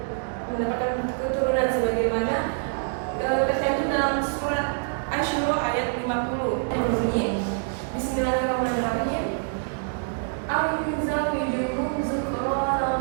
mendapatkan keturunan, sebagaimana tercantum dalam surat Asy-Syura ayat 50 yang berbunyi Bismillahirrahmanirrahim. Aw yuzawwijuhum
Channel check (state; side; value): silent; left; digital silence